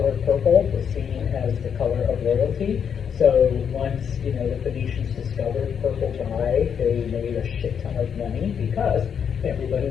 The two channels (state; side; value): quieter; right; 7.5 dB